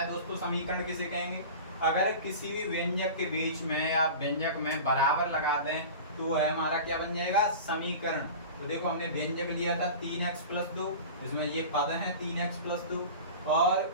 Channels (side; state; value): both; inverted; correlation -0.34